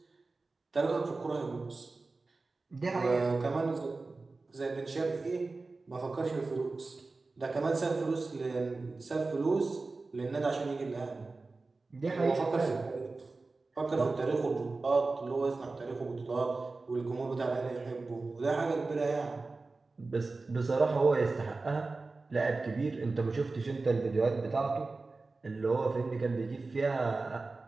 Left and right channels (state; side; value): quieter; left; 3.6 dB